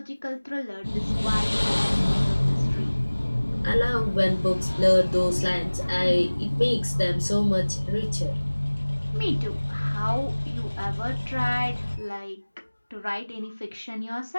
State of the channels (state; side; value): inverted; both; correlation -1.00